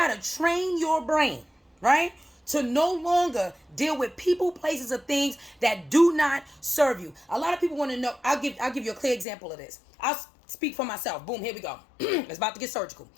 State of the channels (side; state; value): right; drops out; at 9.2 s